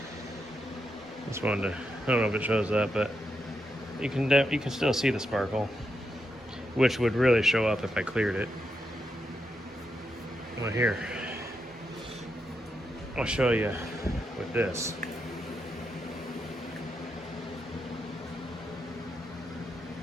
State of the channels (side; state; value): both; normal; correlation 0.83